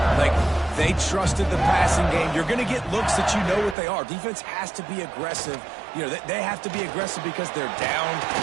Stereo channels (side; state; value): left; drops out; at 3.8 s